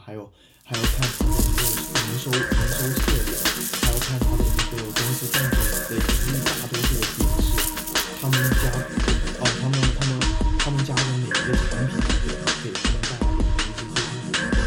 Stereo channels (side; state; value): both; identical; correlation 1.00